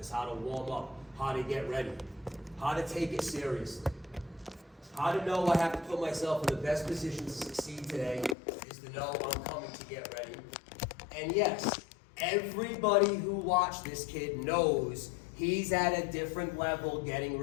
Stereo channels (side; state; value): right; drops out; at 8.3 s